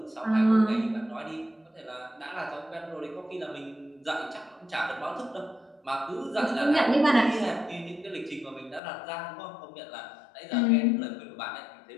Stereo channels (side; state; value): right; drops out; at 8.8 s